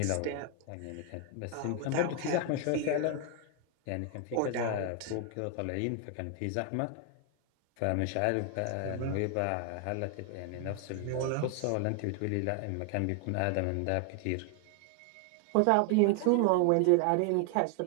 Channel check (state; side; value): different; both; correlation 0.00